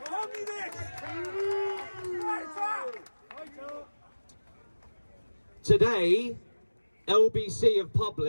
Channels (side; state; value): both; inverted; correlation -1.00